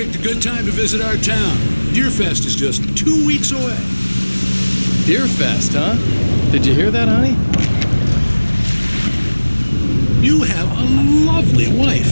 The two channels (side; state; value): both; inverted; correlation -1.00